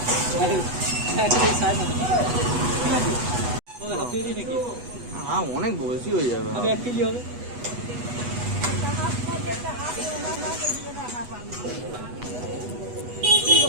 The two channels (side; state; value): left; late; 8.2 ms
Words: অনেক বেশি হয়ে যাবে।